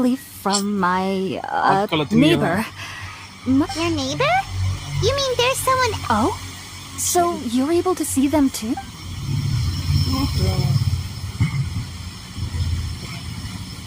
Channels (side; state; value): both; identical; correlation 1.00